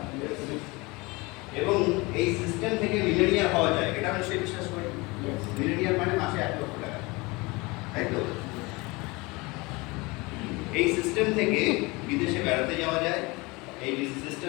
এবং এই সিস্টেম থেকে মিলেনিয়ার হওয়া যায়, এটা আমি সেই বিশ্বাস করি। মিলেনিয়ার মানে মাসে 1 লক্ষ টাকা, তাই তো? এই সিস্টেম থেকে বিদেশে বেড়াতে যাওয়া যায়, এই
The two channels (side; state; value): right; quieter; 24.6 dB